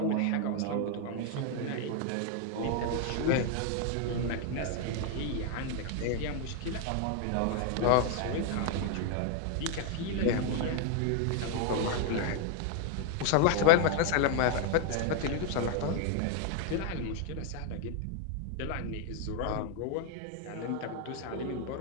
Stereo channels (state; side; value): different; both; correlation 0.00